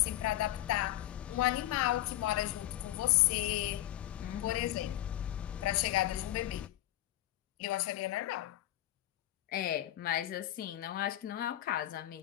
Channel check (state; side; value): quieter; right; 14.3 dB